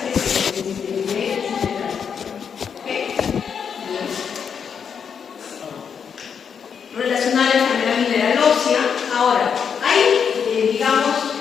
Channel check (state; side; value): quieter; right; 7.0 dB